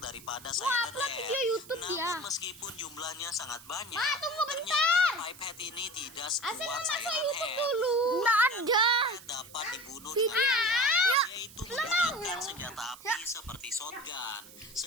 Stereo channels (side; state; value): right; noise; hiss, 19 dB below the sound